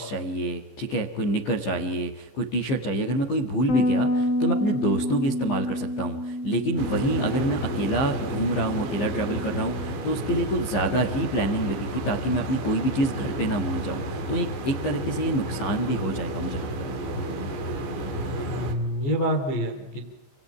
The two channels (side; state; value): right; late; 15 ms